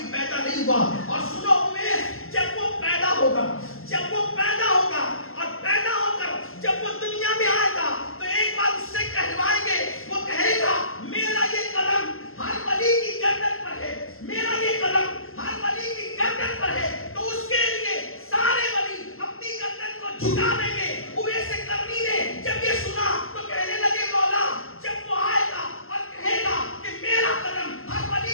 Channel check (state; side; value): late; right; 0.62 ms